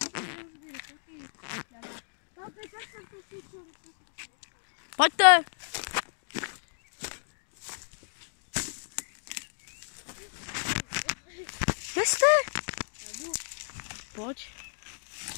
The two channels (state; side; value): silent; right; digital silence